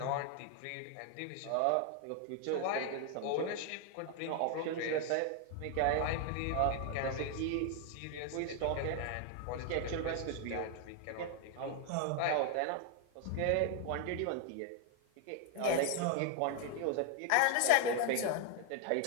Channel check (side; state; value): both; different; correlation 0.00